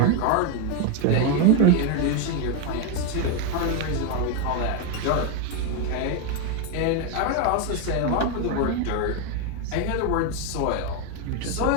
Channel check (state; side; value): different; both; correlation 0.01